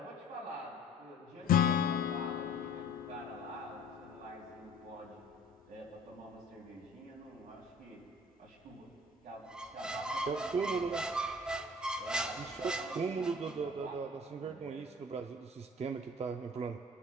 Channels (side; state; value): both; normal; correlation 0.48